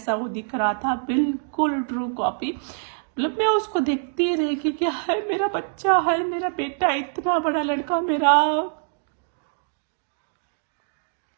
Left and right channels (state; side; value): silent; left; digital silence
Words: वो दिख रहा था, बिल्कुल ट्रू कॉपी। मतलब मैं उसको देखती रही कि क्या है, मेरा बच्चा है, मेरा बेटा, इतना बड़ा लड़का मेरा।